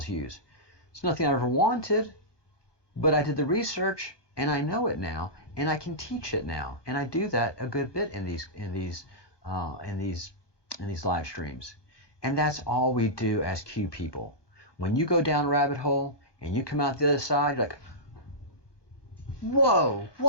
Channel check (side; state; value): right; late; 1.2 ms